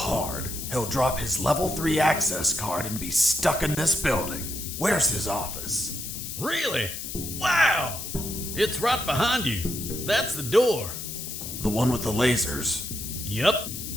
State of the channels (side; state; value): left; noise; hiss, 7 dB below the sound